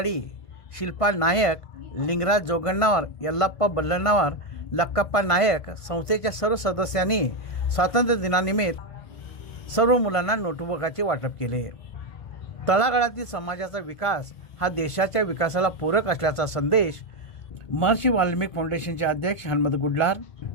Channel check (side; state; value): right; late; 1.5 ms